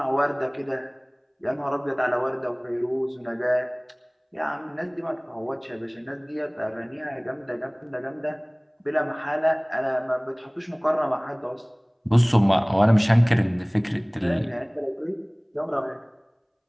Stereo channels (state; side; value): identical; both; correlation 1.00